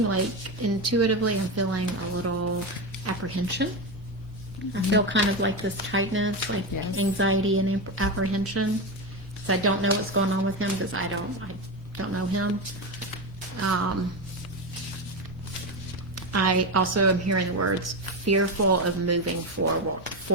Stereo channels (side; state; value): both; normal; correlation 0.15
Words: like intuitively, I'm feeling a little apprehension. I feel kind of like this tightness, like Yes. anxiety and apprehension. So I don't know what's going on with him because I don't know him. I also am hearing the words fearful of moving